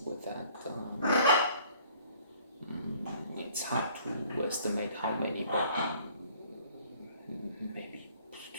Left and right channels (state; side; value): inverted; both; correlation -0.57